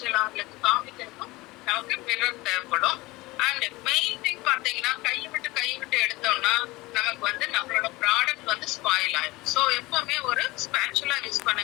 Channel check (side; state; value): right; quieter; 21.0 dB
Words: அவங்களுக்கு காமிக்கிறதுக்கும் நமக்கு மிரர் தேவைப்படும். அண்ட் மெயின் திங் பாத்தீங்கன்னா கை விட்டு எடுத்தோம்னா நமக்கு வந்து நம்மளோட ப்ராடக்ட் வந்து ஸ்பாயில் ஆயிடும். ஸோ எப்பவுமே ஒரு ஸ்பேச்சுலா யூஸ்